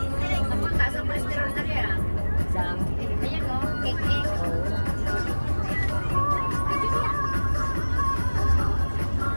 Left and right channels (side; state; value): both; inverted; correlation -1.00